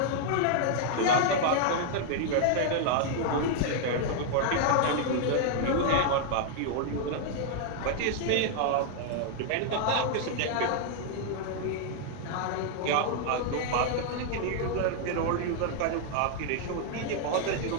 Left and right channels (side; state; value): both; different; correlation 0.00